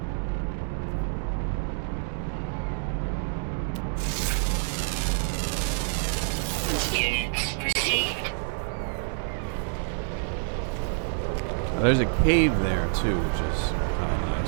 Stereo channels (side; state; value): left; silent; digital silence